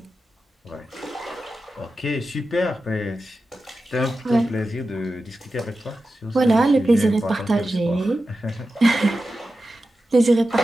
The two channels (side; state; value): both; normal; correlation 0.92